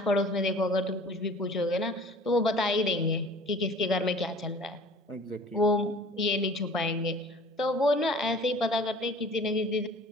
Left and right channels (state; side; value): normal; both; correlation 0.47